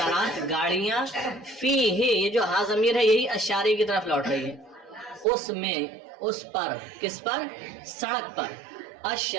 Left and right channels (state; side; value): drops out; left; at 5.2 s